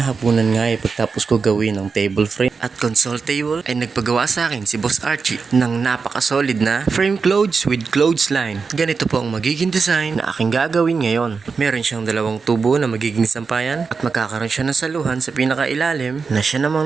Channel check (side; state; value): left; quieter; 5.0 dB